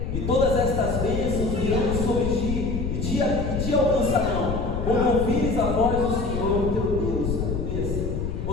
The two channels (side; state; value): left; noise; rumble, 3 dB below the sound